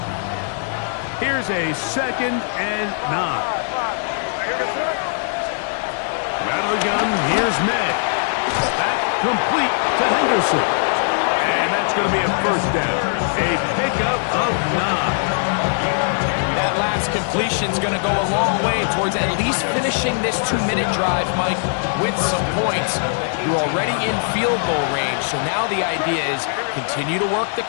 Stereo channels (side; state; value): right; silent; digital silence